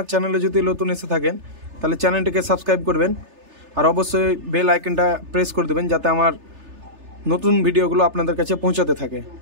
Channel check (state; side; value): late; left; 3.3 ms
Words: চ্যানেলে যদি নতুন এসে থাকেন তাহলে চ্যানেলটিকে সাবস্ক্রাইব করবেন, আর অবশ্যই বেল আইকনটা প্রেস করে দেবেন যাতে আমার নতুন ভিডিওগুলো আপনাদের কাছে পৌঁছাতে থাকে।